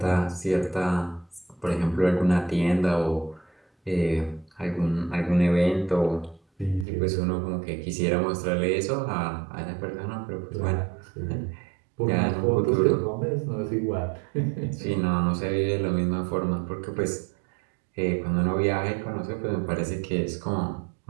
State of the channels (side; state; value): left; drops out; at 6.9 s